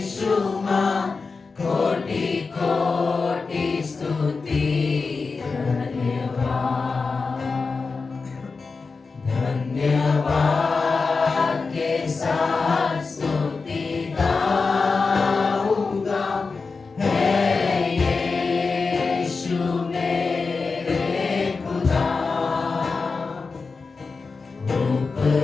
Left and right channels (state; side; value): quieter; right; 4.4 dB